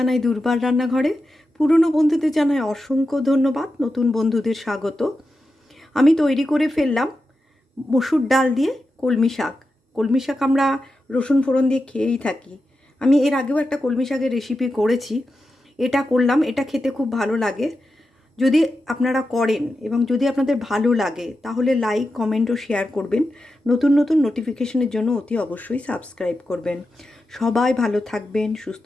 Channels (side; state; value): both; normal; correlation 0.90